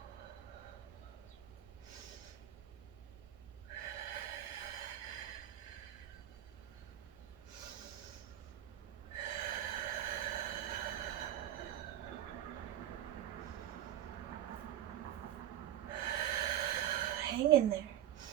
Hang in there.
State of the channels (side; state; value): left; quieter; 11.9 dB